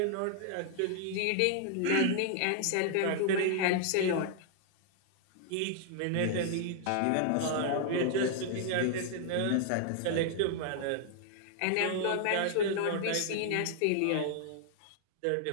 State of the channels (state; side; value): different; both; correlation 0.00